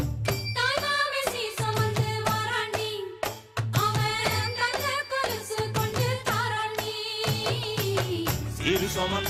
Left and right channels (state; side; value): identical; both; correlation 1.00